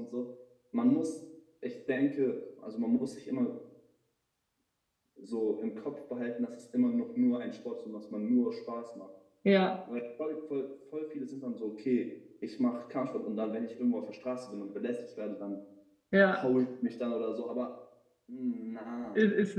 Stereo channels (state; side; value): identical; both; correlation 1.00